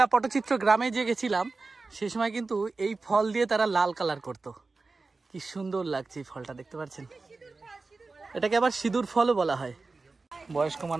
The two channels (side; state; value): left; quieter; 3.8 dB